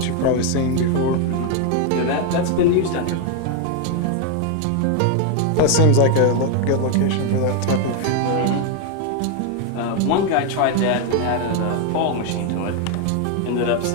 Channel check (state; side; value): different; both; correlation 0.01